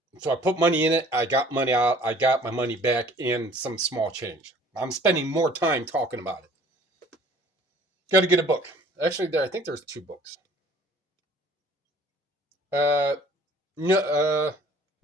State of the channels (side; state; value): both; normal; correlation 0.52